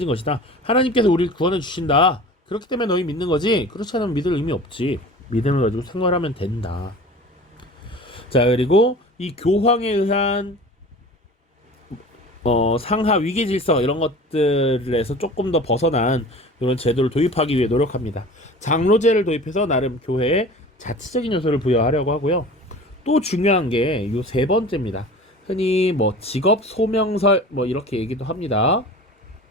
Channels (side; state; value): both; normal; correlation 0.39